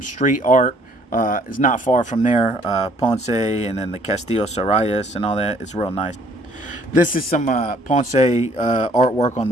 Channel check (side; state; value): both; normal; correlation 0.61